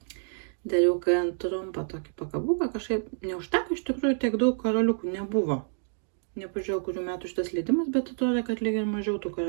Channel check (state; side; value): silent; left; digital silence